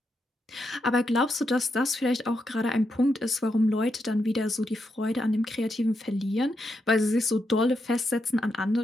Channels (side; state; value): both; normal; correlation 0.83